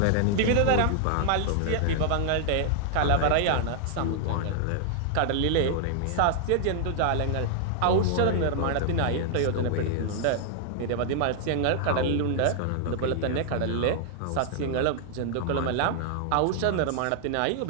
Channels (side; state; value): both; different; correlation -0.01